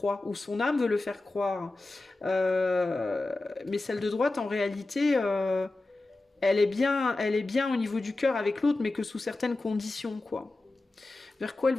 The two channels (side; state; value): right; quieter; 3.0 dB